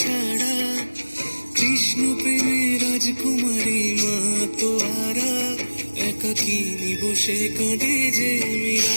সাড়া, কৃষ্ণ প্রেমে রাজকুমারী মাতোয়ারা। একাকিনী বসে কাঁদে যে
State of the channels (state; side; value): inverted; both; correlation -1.00